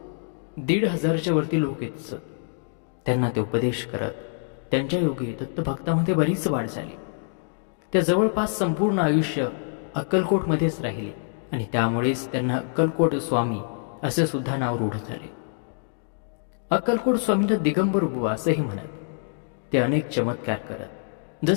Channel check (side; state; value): right; silent; digital silence